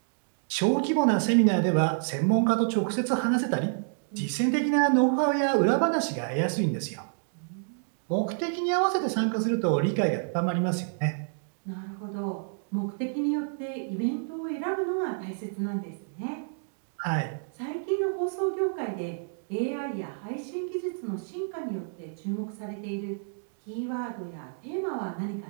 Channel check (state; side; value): silent; left; digital silence